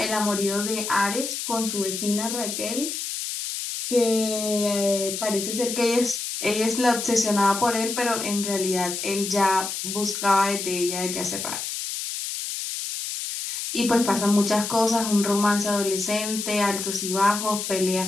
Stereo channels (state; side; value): noise; left; hiss, 5 dB below the sound